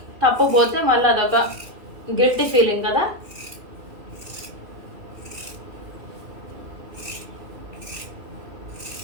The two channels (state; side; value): late; left; 2.8 ms